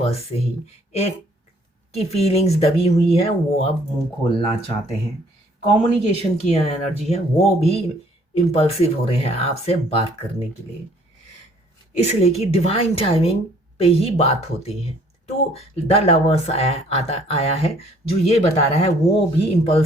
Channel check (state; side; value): normal; both; correlation 0.60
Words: से ही। एक की फीलिंग्स दबी हुई है, वो अब मुंह खोलना चाहते हैं। कम्युनिकेशन की एनर्जी है, वो भी इम्पल्सिव हो रहे हैं आपसे बात करने के लिए, इसलिए कि डिवाइन टाइमिंग पे ही बात होती है। तो द लवर्स आया है जो ये बता रहा है वो भी